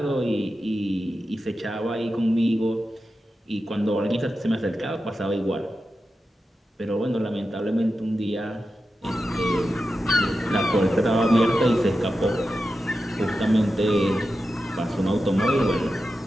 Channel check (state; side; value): normal; both; correlation 0.91